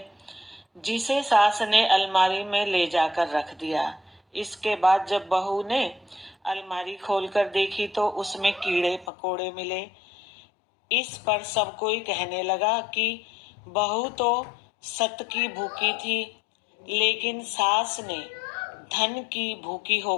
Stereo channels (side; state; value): right; drops out; at 9.1 s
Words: जिसे सास ने अलमारी में ले जाकर रख दिया। इसके बाद जब बहू ने अलमारी खोलकर देखी तो उसमें कीड़े पकोड़े मिले। इस पर सब कोई कहने लगा कि बहू तो सत की भूखी थी, लेकिन सास ने धन की भूखी